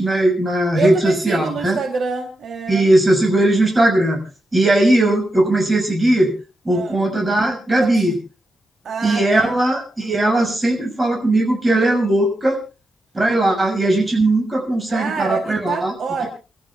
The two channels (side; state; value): both; normal; correlation 0.87